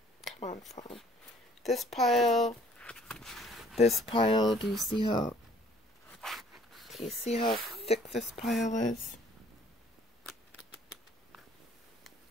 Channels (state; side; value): normal; both; correlation 0.57